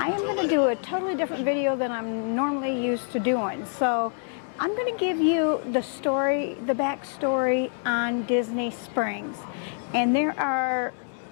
am going to do a totally different video than I'm normally used to doing. So I'm going to give you the story, the backstory on Disney Springs. And there are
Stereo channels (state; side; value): silent; right; 59 dB below the other